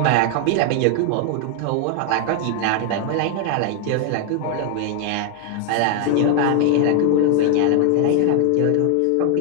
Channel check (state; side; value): different; both; correlation 0.00